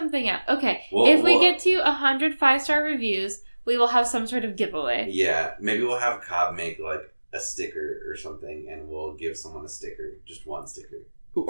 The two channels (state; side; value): inverted; both; correlation -1.00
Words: out. Okay, if we get to 100 5-star reviews, we will have some sort of giveaway. Yeah, maybe we'll have Cobb make like a sticker or something, and we'll give someone a sticker, just one sticker.